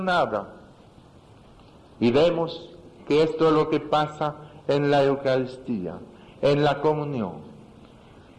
nada. Y vemos que esto es lo que pasa en la Eucaristía, en la comunión.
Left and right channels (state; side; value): identical; both; correlation 1.00